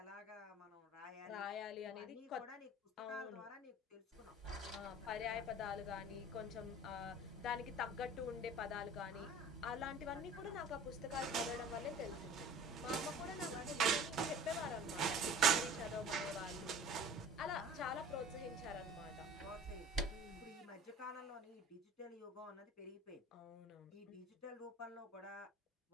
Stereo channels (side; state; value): both; normal; correlation 0.44